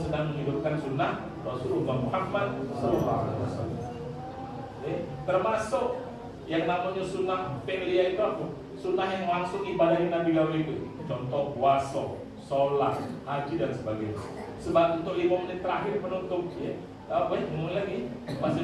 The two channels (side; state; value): both; identical; correlation 1.00